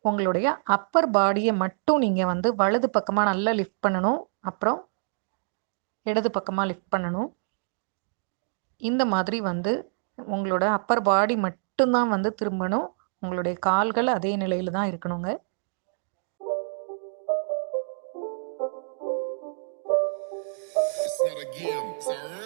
உங்களுடைய அப்பர் பாடியை மட்டும் நீங்கள் வந்து வலது பக்கமாக நல்லா லிஃப்ட் பண்ணணும், அப்புறம் இடது பக்கமாக லிஃப்ட் பண்ணணும். இந்த மாதிரி வந்து உங்களோட அப்பர் பாடி மட்டும்தான் வந்து திரும்பணும். உங்களுடைய கால்கள் அதே நிலையில் தான் இருக்கணுங்க. It's not a game, it's a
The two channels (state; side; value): silent; left; digital silence